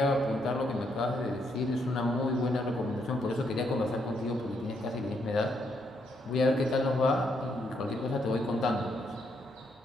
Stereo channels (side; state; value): both; normal; correlation 0.76